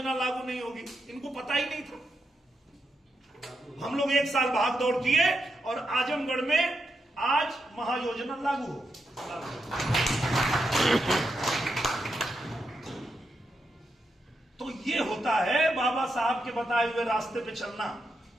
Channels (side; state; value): both; normal; correlation 0.84